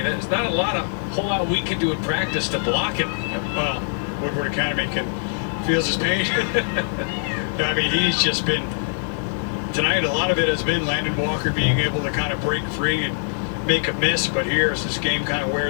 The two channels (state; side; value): silent; right; digital silence